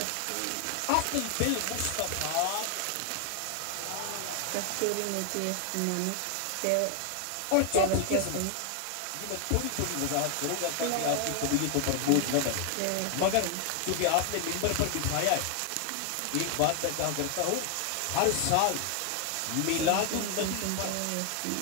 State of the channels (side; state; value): both; different; correlation 0.00